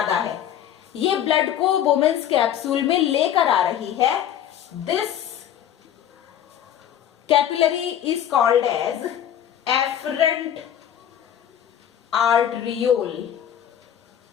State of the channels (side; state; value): right; quieter; 10.2 dB